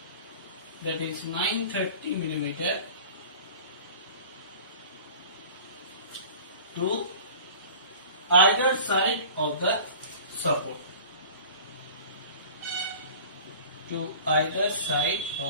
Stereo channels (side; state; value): both; inverted; correlation -0.41